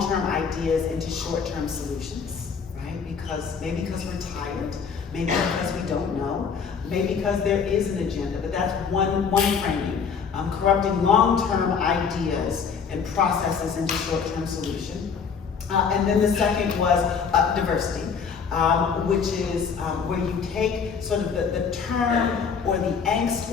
ideas into short-term solutions, right? Maybe because we're tired, maybe because we don't know, maybe because there is an agenda, but that's one framing. Corrupting long-term ideas and processes into short-term solution. And then the second was diversity, which is where you take sort of the term or the angst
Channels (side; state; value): right; quieter; 6.1 dB